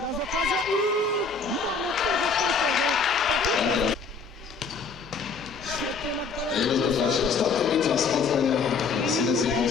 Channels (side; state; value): right; quieter; 4.9 dB